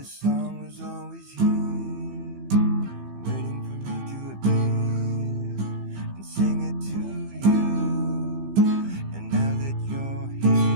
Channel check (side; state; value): left; late; 15 ms